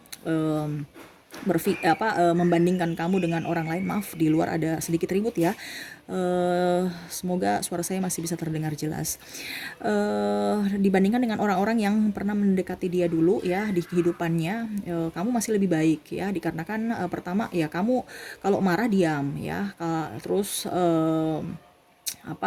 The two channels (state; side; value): identical; both; correlation 1.00